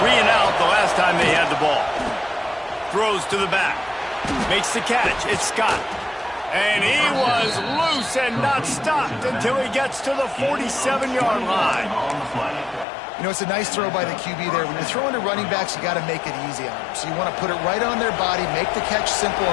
the last time they had the ball. Throws to the back. Makes the catch. It's Scott. And he was loose and not stopped until he gets to the 47-yard line. You know, it's a nice throw by the QB there. When you're throwing to running backs, you got to make it easy on them. So you want to put it right on their body, make the catch simple,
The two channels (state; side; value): drops out; right; at 12.9 s